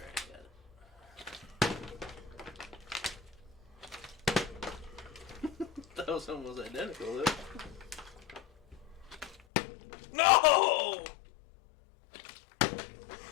got it. That was almost identical, though. No!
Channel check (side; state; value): right; drops out; at 9.4 s